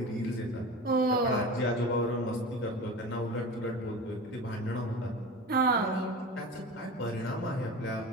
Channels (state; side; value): normal; both; correlation 0.31